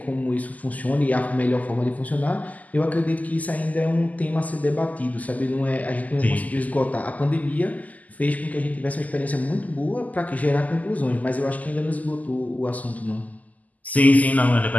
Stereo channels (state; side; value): late; right; 0.078 ms